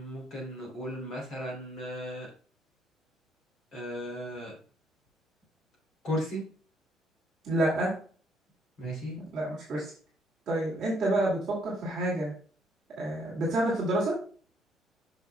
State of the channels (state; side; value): normal; both; correlation 0.69